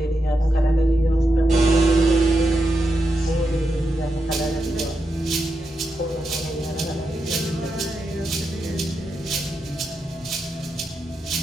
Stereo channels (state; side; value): normal; both; correlation 0.86